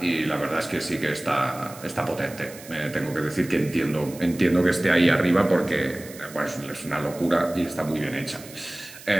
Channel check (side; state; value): right; noise; hiss, 17 dB below the sound